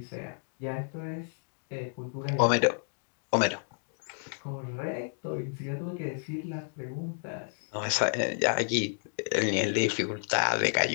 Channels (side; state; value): right; silent; digital silence